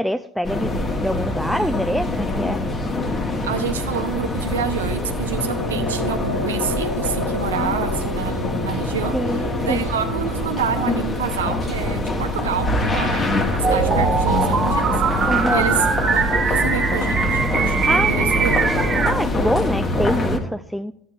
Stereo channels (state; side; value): normal; both; correlation 0.49